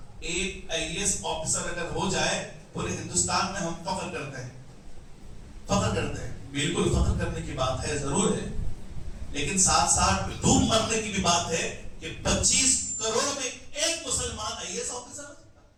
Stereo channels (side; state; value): both; identical; correlation 1.00